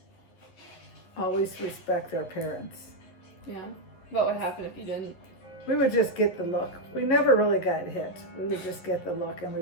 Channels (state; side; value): late; right; 11 ms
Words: Always respect our parents. Yeah. What would happen if you didn't? We would just get the look. We never really got hit. We would just get the look and we